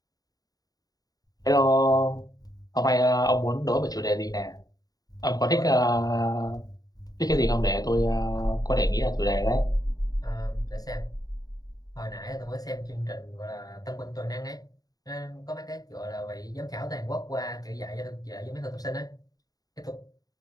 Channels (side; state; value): right; late; 0.18 ms